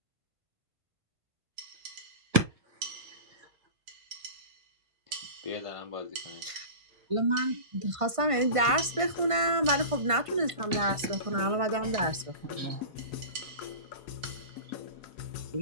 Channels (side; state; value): left; late; 1.5 ms